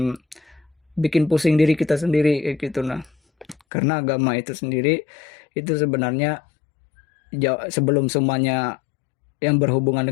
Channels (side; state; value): right; drops out; at 3.6 s